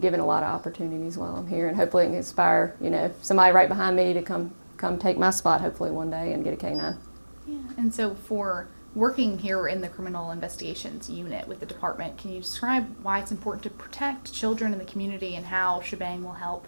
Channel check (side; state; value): both; inverted; correlation -1.00